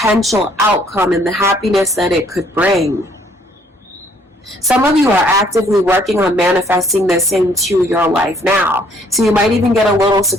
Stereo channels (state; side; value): normal; both; correlation 0.63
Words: outcome and the happiness that it could bring. Some of you are actively working on manifesting this into your life now. So you might even get a little